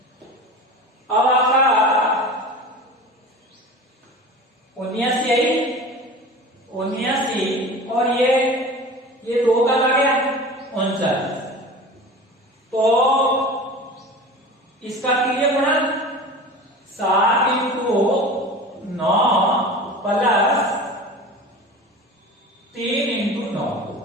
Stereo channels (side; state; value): both; normal; correlation 0.35